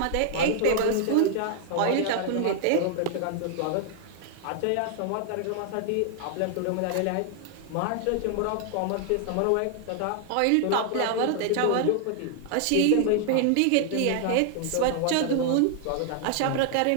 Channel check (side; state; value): both; different; correlation 0.00